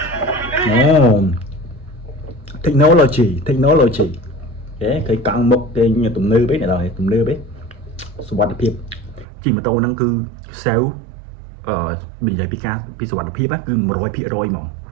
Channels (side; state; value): left; drops out; at 9.2 s